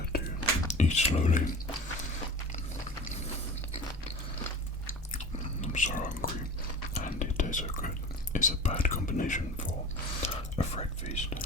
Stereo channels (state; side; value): normal; both; correlation 0.36